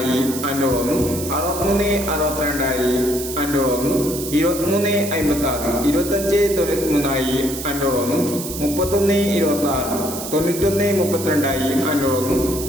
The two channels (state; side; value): noise; right; hiss, 8 dB below the sound